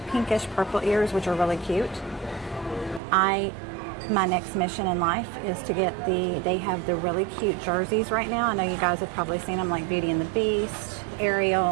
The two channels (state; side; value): drops out; left; at 3.0 s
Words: pinkish purple ears, which are really cute. My next mission in life is to get they have the really cute jerseys right now. I know you guys have probably seen them, like Beauty and the Beast,